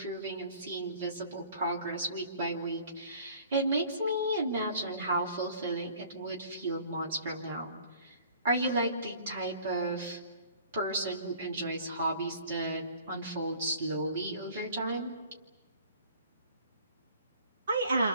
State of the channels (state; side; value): inverted; both; correlation -0.51